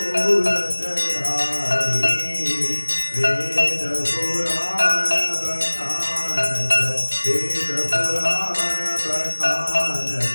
वेद पुराण बखानत वेद पुराण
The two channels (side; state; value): both; inverted; correlation -1.00